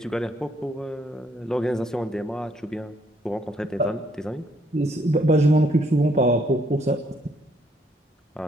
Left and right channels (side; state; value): both; normal; correlation 0.69